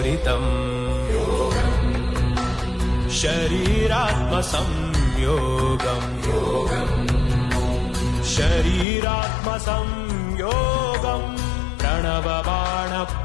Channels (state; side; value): drops out; right; at 8.8 s